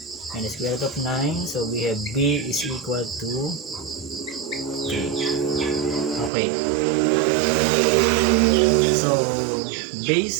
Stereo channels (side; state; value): left; drops out; at 6.3 s